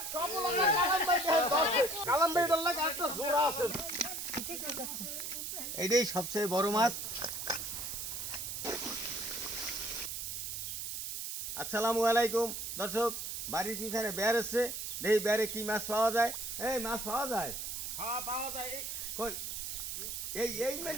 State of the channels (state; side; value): noise; right; hiss, 5 dB below the sound